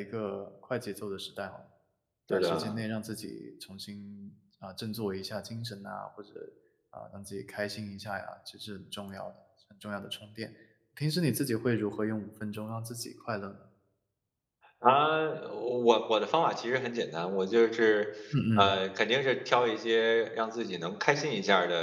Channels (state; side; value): identical; both; correlation 1.00